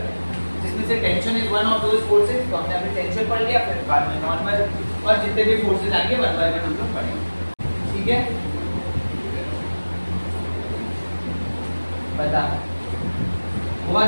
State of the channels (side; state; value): both; inverted; correlation -1.00